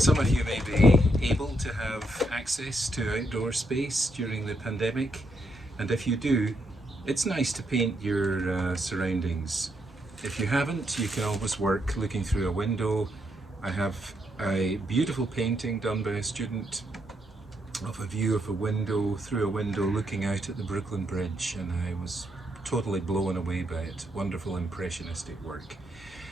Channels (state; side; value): normal; both; correlation 0.78